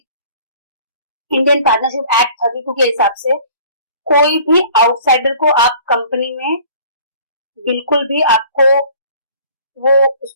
Indian Partnership Act 32 के हिसाब से कोई भी outsider को आप company में बिल्कुल भी आपको वो उस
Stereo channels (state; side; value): inverted; both; correlation -0.50